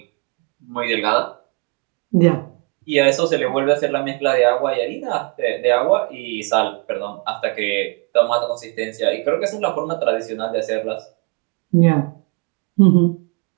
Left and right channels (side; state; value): left; quieter; 30.4 dB